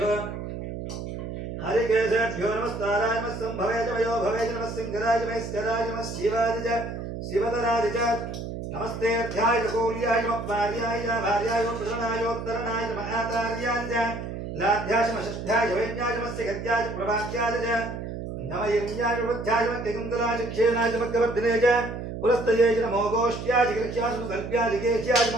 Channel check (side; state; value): right; noise; hum, 7 dB below the sound